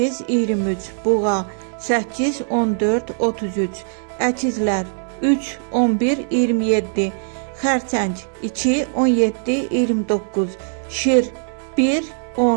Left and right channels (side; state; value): left; silent; 65 dB below the other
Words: 23, buğa 8, 14, 33, əkizlər 3, 11, 27, xərçəng 2, 17, 29, şir 1,